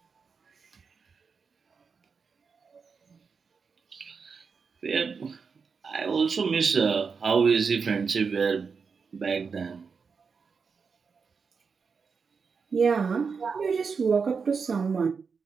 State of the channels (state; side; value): quieter; left; 5.4 dB